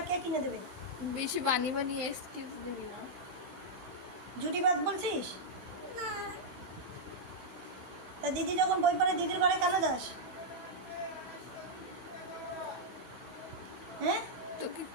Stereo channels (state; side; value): late; left; 16 ms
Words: কে কিনে দেবে? বেশি বানিয়ে এক্সকিউজ দিবি না। জুটিবাদ বলছিস? না, তা দিদি যখন বই পড়ে দিদির ঘরে কেন যাস? হ্যাঁ, তোকে